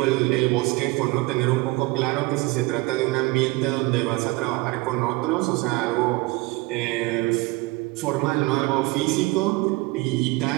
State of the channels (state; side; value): quieter; left; 22.5 dB